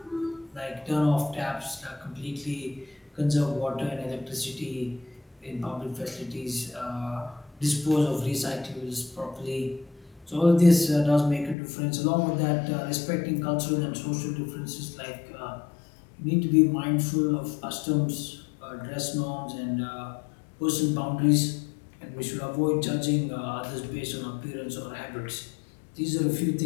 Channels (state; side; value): drops out; right; at 11.6 s